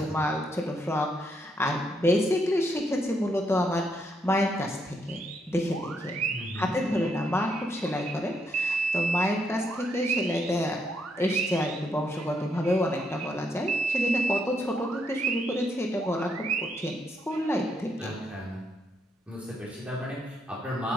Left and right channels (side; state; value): both; normal; correlation 0.77